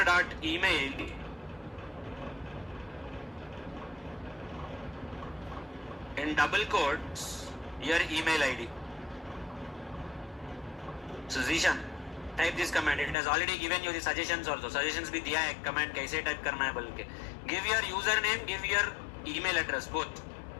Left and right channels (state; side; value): drops out; right; at 13.2 s